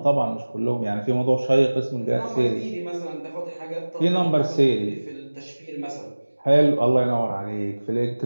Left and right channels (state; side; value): inverted; both; correlation -1.00